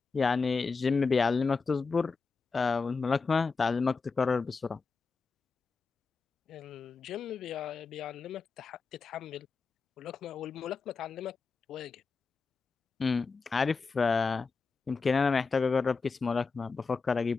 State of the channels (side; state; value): right; quieter; 4.6 dB